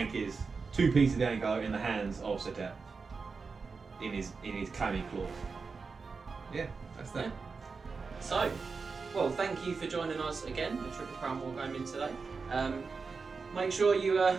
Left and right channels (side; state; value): left; quieter; 4.7 dB